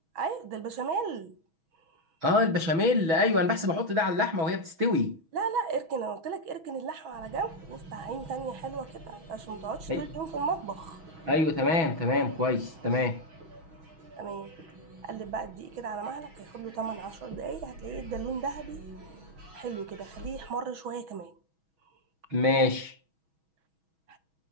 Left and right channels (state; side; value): late; left; 6.1 ms